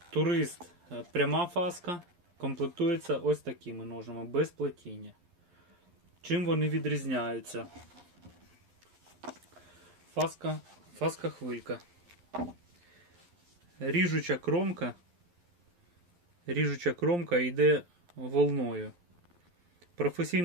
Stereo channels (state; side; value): late; left; 11 ms